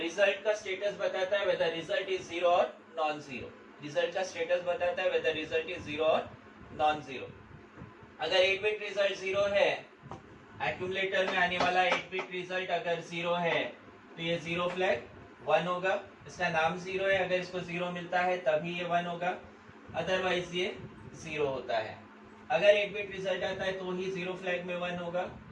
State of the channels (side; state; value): both; identical; correlation 1.00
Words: का स्टेटस बताता है वेदर रिजल्ट इज जीरो और नॉन जीरो। रिजल्ट का स्टेटस बताता है वेदर रिजल्ट इज जीरो और नॉन जीरो। अगर 8 बिट रिजल्ट जीरो है, एक्यूमुलेटर में आने वाला 8 बिट रिजल्ट अगर जीरो है, तो ये जीरो फ्लैग 1 होगा। इसका नाम जीरो है, अगर इसको जीरो मिलता है तभी ये 1 होगा, अदरवाइज ये जीरो होता है। अगर 8 बिट रिजल्ट आता है तो ही जीरो फ्लैग में 1 होगा,